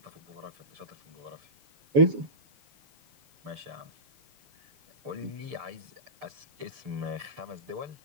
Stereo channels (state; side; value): late; left; 6.8 ms